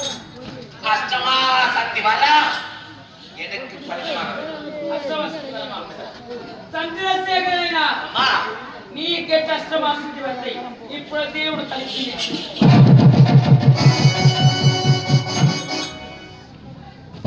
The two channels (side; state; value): both; identical; correlation 1.00